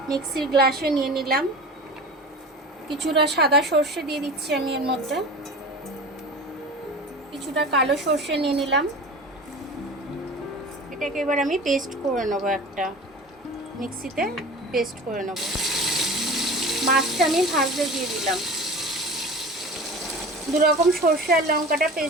মিক্সির গ্লাসে নিয়ে নিলাম। কিছুটা সাদা সর্ষে দিয়ে দিচ্ছি আমি এর মধ্যে, কিছুটা কালো সর্ষে নিয়ে নিলাম। এটাকে এবার আমি পেস্ট করে নেব, একটা মিক্সিতে পেস্ট করে নেব। মাছটা আমি ভাজতে দিয়ে দিলাম। দু রকম সর্ষে আর লঙ্কাটা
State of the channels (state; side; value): normal; both; correlation 0.35